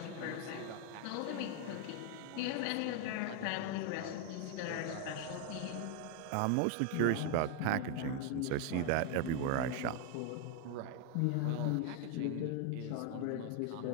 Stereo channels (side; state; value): both; different; correlation 0.01